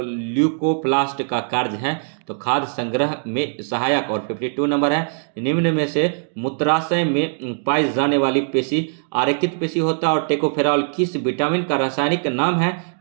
का कार्य है? तो खाद्य संग्रह में सहायक। और 52 नंबर है, निम्न में से मूत्राशय में पाई जाने वाली पेशी आरेखित पेशी होता है? और टेकोफेरॉल किस विटामिन का रासायनिक नाम है?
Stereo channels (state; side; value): silent; left; digital silence